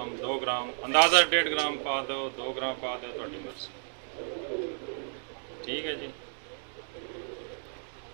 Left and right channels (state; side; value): silent; left; digital silence